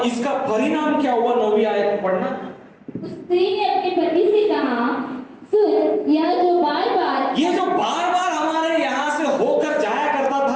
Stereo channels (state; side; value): identical; both; correlation 1.00